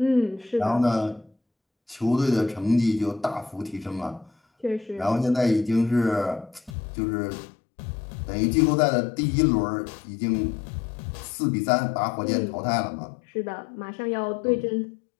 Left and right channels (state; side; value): drops out; right; at 6.7 s